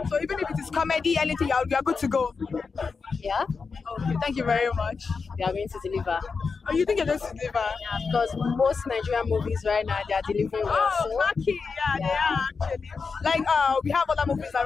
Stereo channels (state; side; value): quieter; right; 4.9 dB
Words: So even if it is comedy, anything, you are good to go. Yeah. Okay. Thank you very much. They are going to deliver. Oh, you think you're going to deliver? Yeah, because most Nigerian movies right now they are delivering well. Oh, lucky. Yeah, they are actually. Like we have other movies that